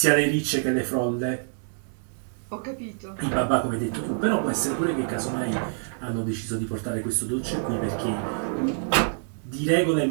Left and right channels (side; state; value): left; silent; 61 dB below the other